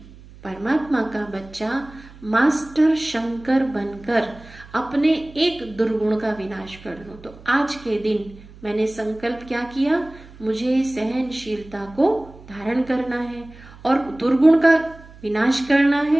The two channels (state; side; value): noise; right; hum, 20 dB below the sound